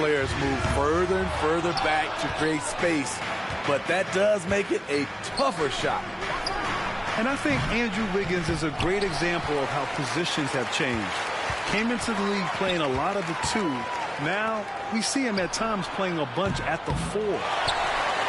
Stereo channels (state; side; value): identical; both; correlation 1.00